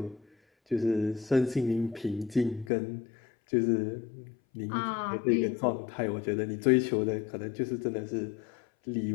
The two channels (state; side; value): drops out; right; at 2.7 s